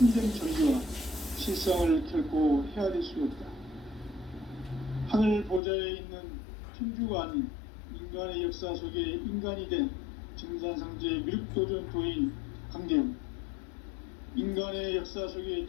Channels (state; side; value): drops out; right; at 5.6 s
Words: 전기와 실상을 결코 헤아릴 수 없다. 하늘 보좌에 있는 천주가 아닌 인간의 역사 속에 인간이 된 증산상제 미륵도전 도인 강대우, 인간의 역사 속에